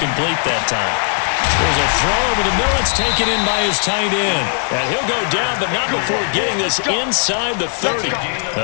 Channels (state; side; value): silent; right; 58 dB below the other